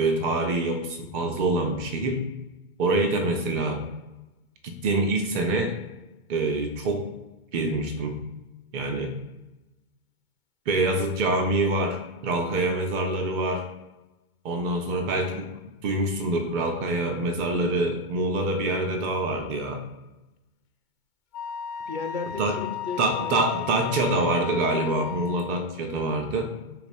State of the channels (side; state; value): left; late; 2.2 ms